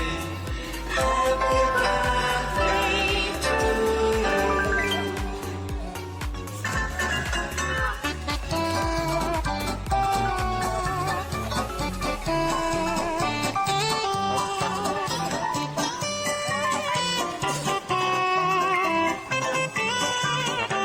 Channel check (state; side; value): identical; both; correlation 1.00